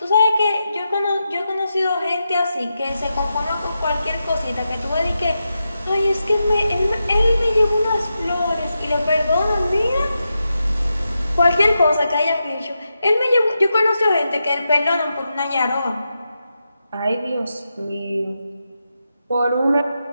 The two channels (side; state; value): both; inverted; correlation -0.88